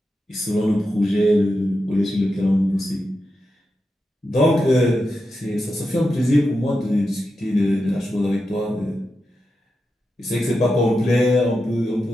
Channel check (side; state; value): both; normal; correlation 0.89